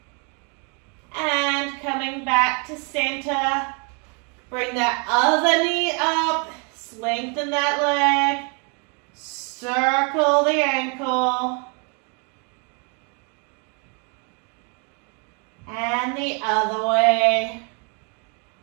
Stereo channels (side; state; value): left; quieter; 35.9 dB